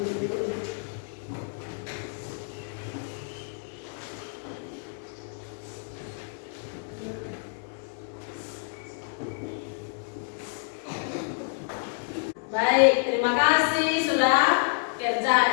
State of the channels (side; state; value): right; silent; 59 dB below the other